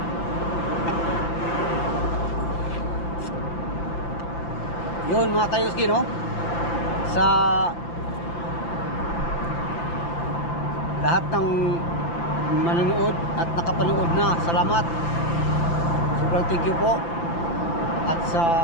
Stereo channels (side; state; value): right; late; 5.9 ms